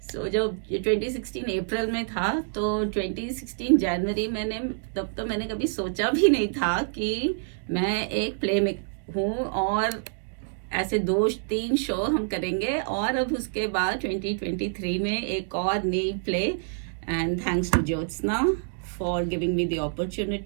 सो जब 2016 अप्रैल में था, तो 2016 जनवरी तब तो मैंने कभी सोचा भी नहीं था कि मैं एक प्ले में हूँ और ऐसे 2-3 शो हम करेंगे। और अब उसके बाद 2023 में एक और नई play, and thanks to Jyotsna for giving me the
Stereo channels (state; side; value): silent; left; digital silence